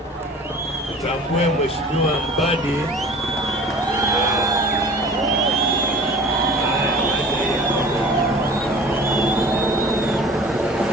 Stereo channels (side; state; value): both; normal; correlation 0.44